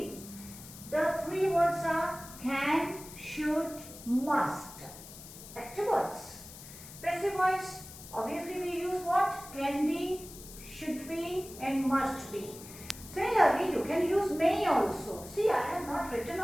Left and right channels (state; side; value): noise; left; hiss, 15 dB below the sound